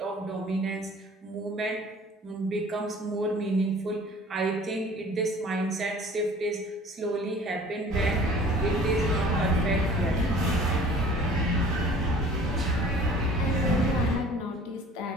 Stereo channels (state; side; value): normal; both; correlation 0.49